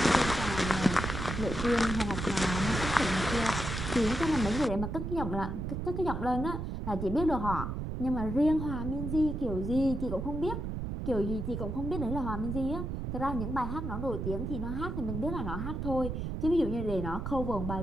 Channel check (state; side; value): noise; right; rumble, 4 dB below the sound